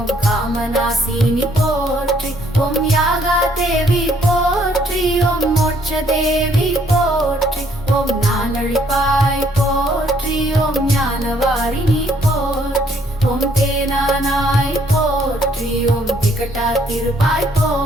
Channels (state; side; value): normal; both; correlation 0.67